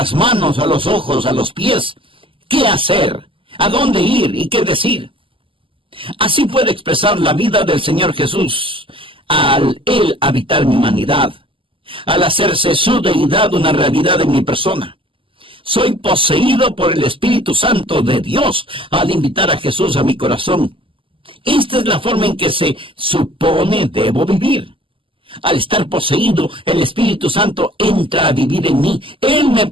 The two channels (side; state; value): left; late; 0.25 ms